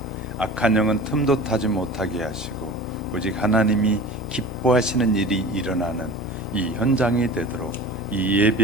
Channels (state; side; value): normal; both; correlation 0.37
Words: 악한 영은 틈도 타지 못하게 하시고, 오직 하나님이 기뻐하시는 일이 일어나는 이 현장이 되도록 이